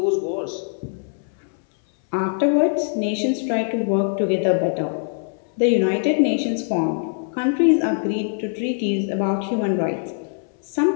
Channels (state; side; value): silent; right; 60 dB below the other